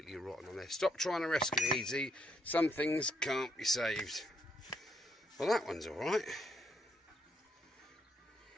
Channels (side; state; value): both; normal; correlation 0.73